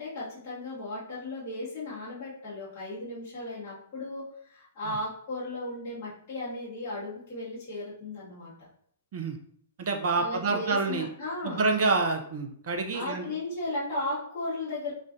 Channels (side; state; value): both; inverted; correlation -0.43